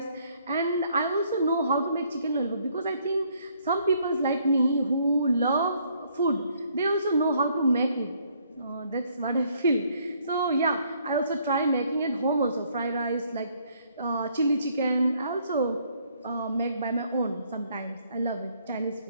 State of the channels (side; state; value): both; inverted; correlation -0.66